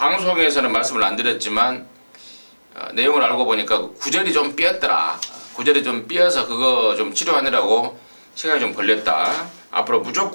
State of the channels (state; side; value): inverted; both; correlation -1.00